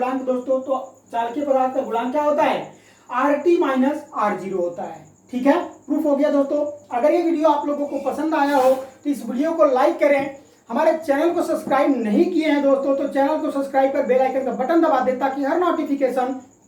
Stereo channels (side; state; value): both; identical; correlation 1.00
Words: दोस्तों, तो चालकीय पदार्थ का गुणांक क्या होता है, RT माइनस R0 होता है। ठीक है, प्रूफ हो गया दोस्तों। अगर ये वीडियो आप लोगों को पसंद आया हो तो इस वीडियो को लाइक करें। हमारे चैनल को सब्सक्राइब नहीं किए हैं दोस्तों, तो चैनल को सब्सक्राइब कर बेल आइकन का बटन दबा दें ताकि हर नोटिफिकेशन